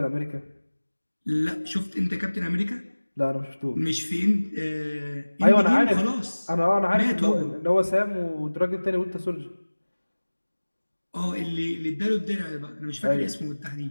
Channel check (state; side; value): inverted; both; correlation -1.00